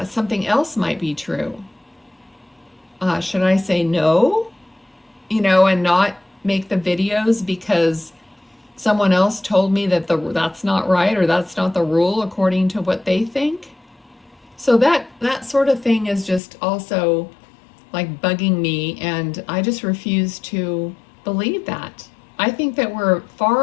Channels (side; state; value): right; drops out; at 16.4 s